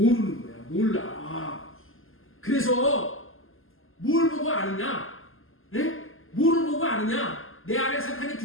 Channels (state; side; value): late; right; 0.60 ms